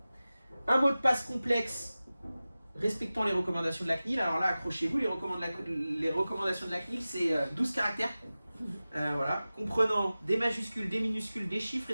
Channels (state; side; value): inverted; both; correlation -0.96